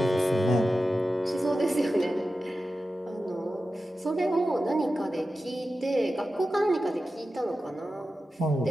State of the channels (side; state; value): both; normal; correlation 0.93